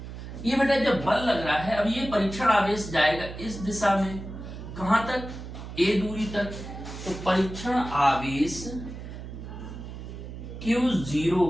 ये बेटा जब बल लग रहा है, अब ये परीक्षण आवेश जाएगा इस दिशा में, कहां तक, a दूरी तक। तो परीक्षण आवेश Q0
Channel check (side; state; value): right; noise; hum, 10 dB below the sound